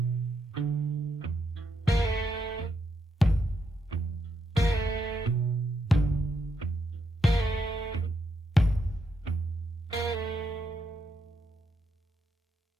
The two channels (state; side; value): normal; both; correlation 0.80